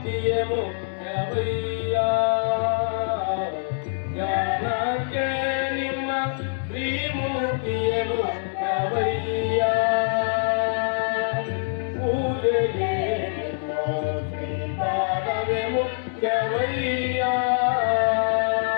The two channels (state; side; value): silent; right; digital silence